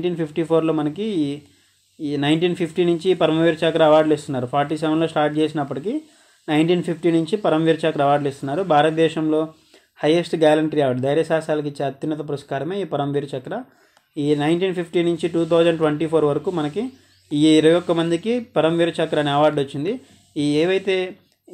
మనకి ఈ 1950 నుంచి పరమవీర చక్ర అవార్డులు ఇస్తున్నారు. 47లో స్టార్ట్ చేసినప్పటికీ 1950 నుంచి పరమవీర చక్ర అవార్డులు ఇస్తున్నారు. భారతదేశంలో హైయెస్ట్ గ్యాలంటరీ అవార్డు, ధైర్య సాహసాలకు ఇచ్చే అత్యున్నత పురస్కారమే ఈ పరమవీర చక్ర. ఈ 1950 నుంచి 2024 వరకు మనకి ఈ 21 మందికి పరమవీర చక్ర అనే అవార్డు వచ్చింది. ఈ ఏవైతే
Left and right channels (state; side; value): identical; both; correlation 1.00